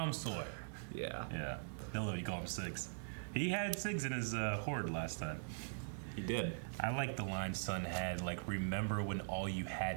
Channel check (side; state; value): left; silent; digital silence